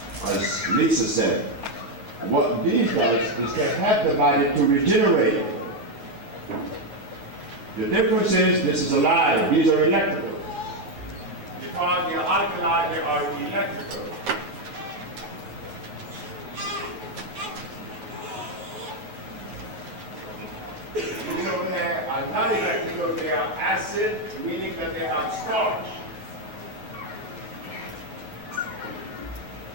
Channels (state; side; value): late; left; 9.4 ms